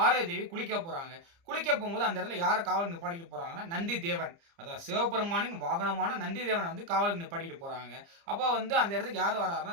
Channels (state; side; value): late; left; 30 ms